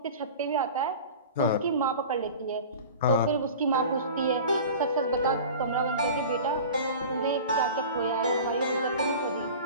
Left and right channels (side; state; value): both; inverted; correlation -0.37